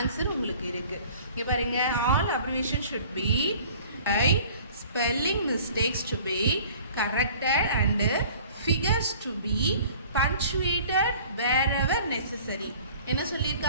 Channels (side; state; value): both; inverted; correlation -0.49